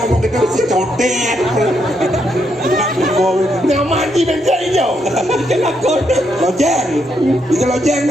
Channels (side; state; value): both; normal; correlation 0.77